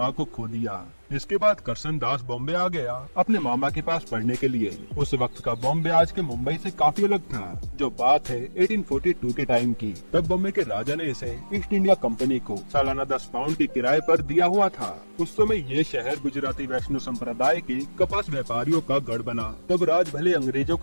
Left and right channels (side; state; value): both; inverted; correlation -1.00